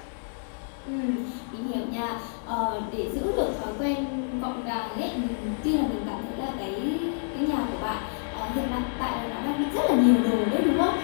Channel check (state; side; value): silent; right; 59 dB below the other